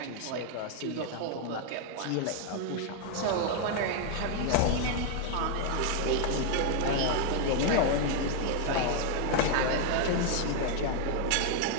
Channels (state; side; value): different; both; correlation 0.01